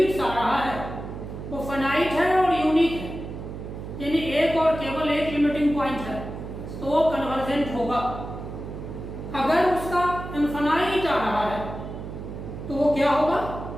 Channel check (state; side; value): noise; right; hum, 9 dB below the sound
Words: आ रहा है वो फाइनाइट है और यूनिक है, यानी एक और केवल एक लिमिटिंग पॉइंट है, तो वो कन्वर्जेंट होगा। अगर उसका इनफाइनाइट आ रहा है तो वो क्या होगा,